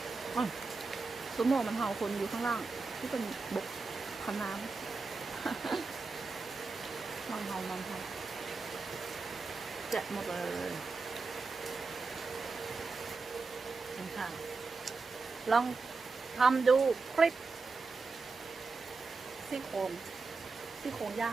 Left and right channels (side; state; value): left; quieter; 4.2 dB